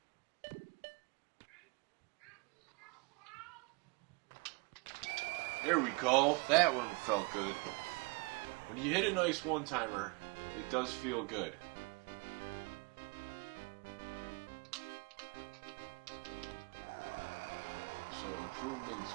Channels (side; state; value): left; quieter; 31.6 dB